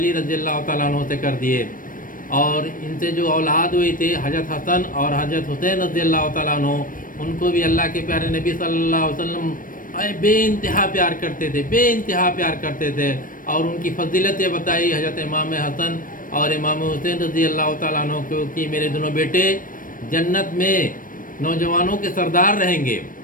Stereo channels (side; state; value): right; late; 0.40 ms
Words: رضی اللہ تعالیٰ عنہ سے کر دیے، اور ان سے جو اولاد ہوئی تھی حضرت حسن اور حضرت حسین رضی اللہ تعالیٰ عنہ، ان کو بھی اللہ کے پیارے نبی صلی اللہ علیہ وسلم بے انتہا پیار کرتے تھے، بے انتہا پیار کرتے تھے۔ اور ان کی فضیلتیں بتائی حضرت امام حسن اور امام حسین رضی اللہ تعالیٰ عنہ کو کہ میرے دونوں بیٹے جنت میں نوجوانوں کے سردار رہیں گے۔